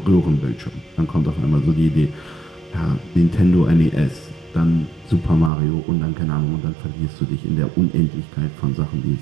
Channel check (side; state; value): left; drops out; at 5.5 s